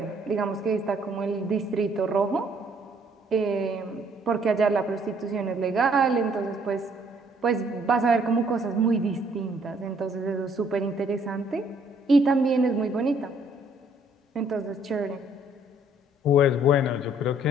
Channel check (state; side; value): normal; both; correlation 0.63